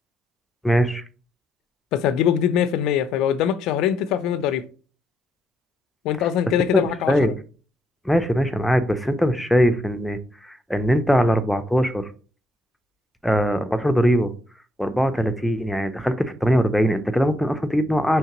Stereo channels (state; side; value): normal; both; correlation 0.76